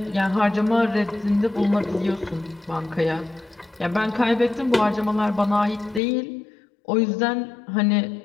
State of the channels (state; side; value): drops out; right; at 6.0 s